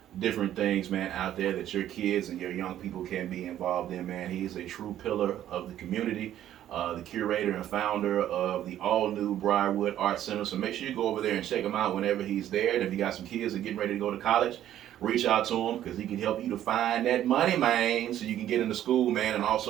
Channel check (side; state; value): left; quieter; 11.8 dB